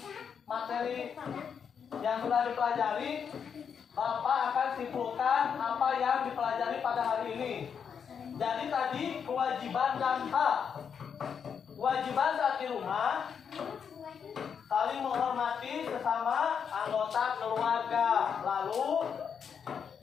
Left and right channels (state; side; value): quieter; right; 7.1 dB